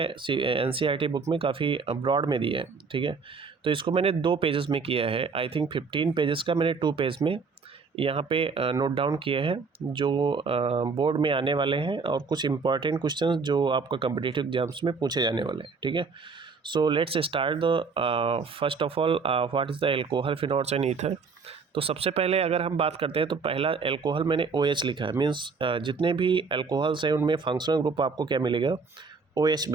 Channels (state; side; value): quieter; left; 4.9 dB